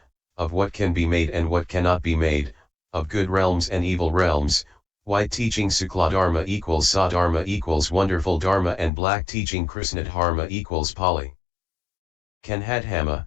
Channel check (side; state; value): right; drops out; at 8.9 s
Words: of what can be made and what cannot be made, of good realms and evil realms, white teaching Sukla Dharma equals Sadharma equals wonderful Dharma and black teaching Krishna Dharma equals Pali Kanhadhama,